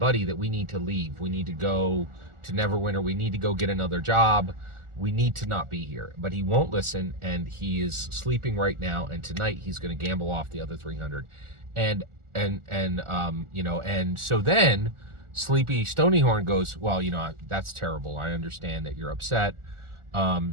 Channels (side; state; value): left; late; 1.4 ms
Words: that we need to leave. We need to go to Neverwinter. We need to go get another job. We need to not be here. But he won't listen, and he is sleeping right now. And tonight he's going to gamble off the other 300. And so then Sleepy Stonyhorn goes, well, that's terrible. I understand that you're upset.